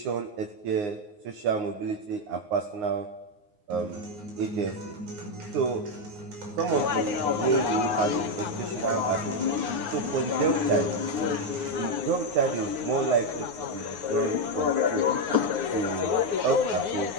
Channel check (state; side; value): late; left; 9.6 ms